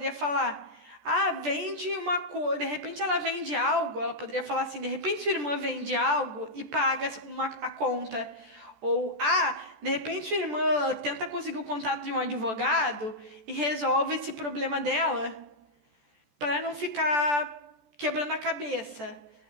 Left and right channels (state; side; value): late; left; 14 ms